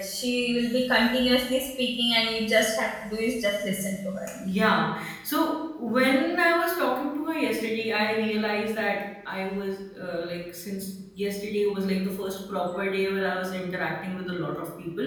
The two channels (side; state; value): both; identical; correlation 1.00